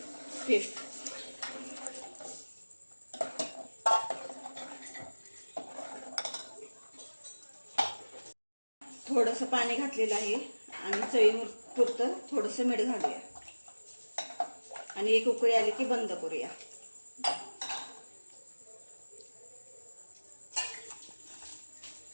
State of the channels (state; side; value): inverted; both; correlation -1.00